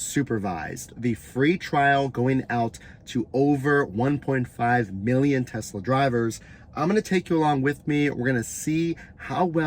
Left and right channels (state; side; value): identical; both; correlation 1.00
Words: The free trial going out to over 1.5 million Tesla drivers. I'm going to take you along with me. We're going to see how